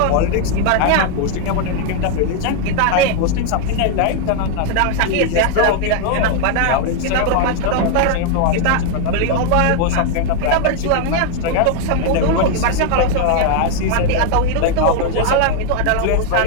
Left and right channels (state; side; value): different; both; correlation 0.00